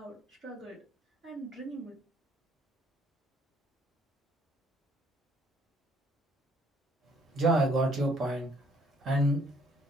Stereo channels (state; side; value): normal; both; correlation 0.64